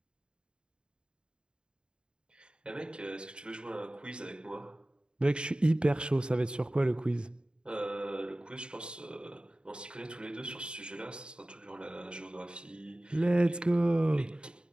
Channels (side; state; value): left; late; 0.051 ms